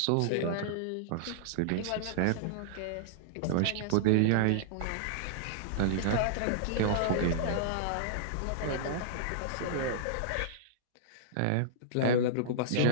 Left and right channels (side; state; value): both; different; correlation -0.01